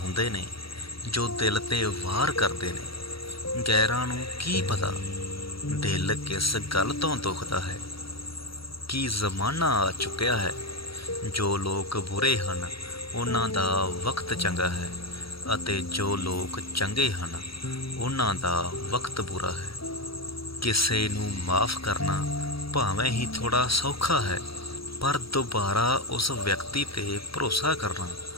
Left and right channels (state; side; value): late; right; 0.75 ms